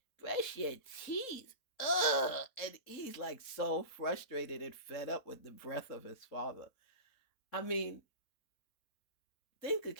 brush your teeth. Ugh. And he's like so frustrated and fed up with the breath of his father. I mean, think of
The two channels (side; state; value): right; late; 3.7 ms